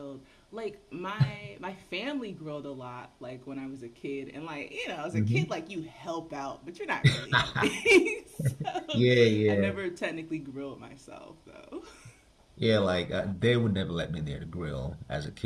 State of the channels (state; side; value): identical; both; correlation 1.00